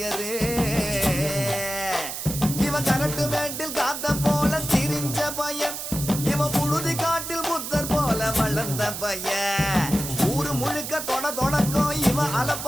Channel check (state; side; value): noise; right; hiss, 6 dB below the sound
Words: இவன் கரட்டு மேட்டில் காத்த போல திரிஞ்ச பையன் இவன் புழுதி காட்டில் புத்தர் போல வளர்ந்த பையன் ஊரு முழுக்க தொடக்கம் இவன்